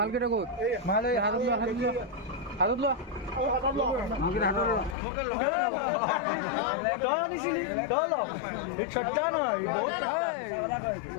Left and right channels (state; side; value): drops out; right; at 5.0 s